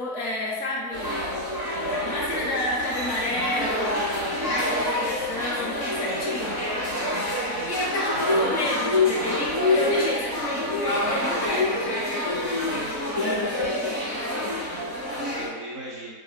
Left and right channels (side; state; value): left; late; 4.0 ms